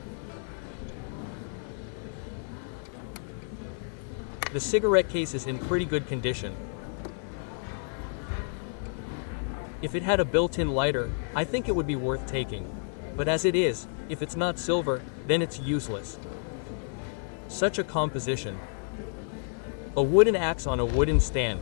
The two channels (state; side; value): silent; right; 58 dB below the other